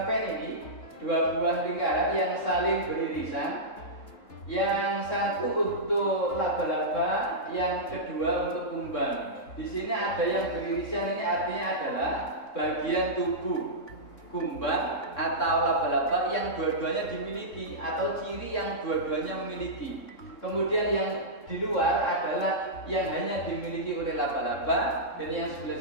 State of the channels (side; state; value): right; late; 3.7 ms